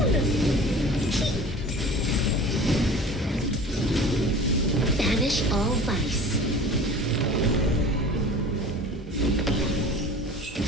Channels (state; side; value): normal; both; correlation 0.41